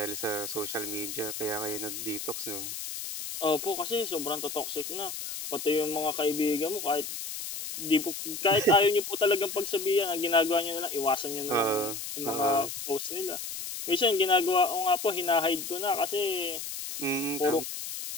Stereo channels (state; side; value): noise; left; hiss, 7 dB below the sound